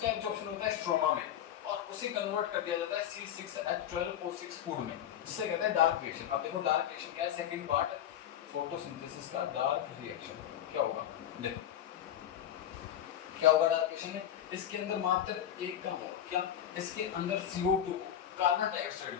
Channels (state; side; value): quieter; right; 10.5 dB